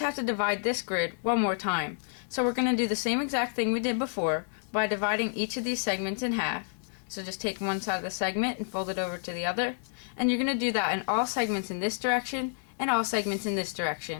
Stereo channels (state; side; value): silent; right; digital silence